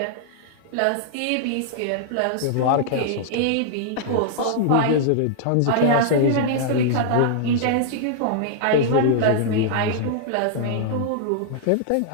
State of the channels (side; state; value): both; different; correlation -0.01